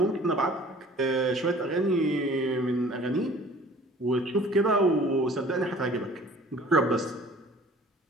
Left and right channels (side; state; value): both; normal; correlation 0.49